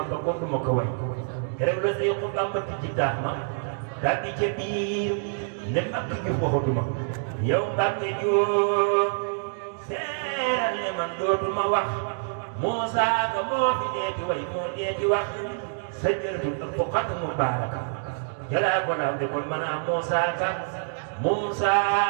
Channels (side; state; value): left; silent; digital silence